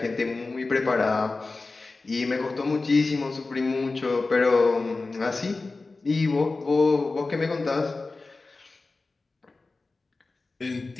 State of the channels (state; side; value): quieter; right; 3.6 dB